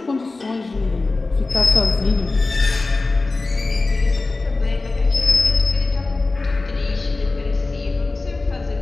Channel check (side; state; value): right; quieter; 3.5 dB